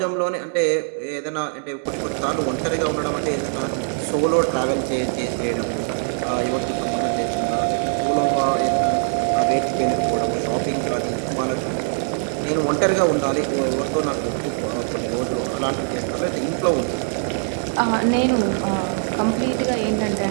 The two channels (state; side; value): silent; left; 59 dB below the other